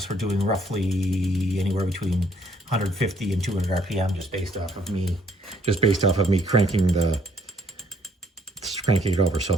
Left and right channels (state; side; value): normal; both; correlation 0.66